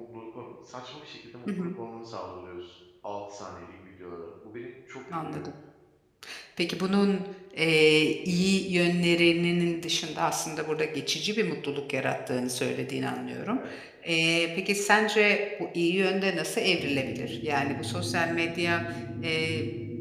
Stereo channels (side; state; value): both; identical; correlation 1.00